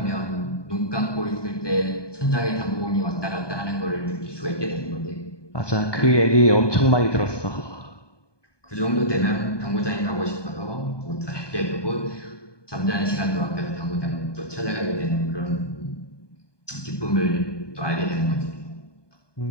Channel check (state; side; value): late; right; 1.2 ms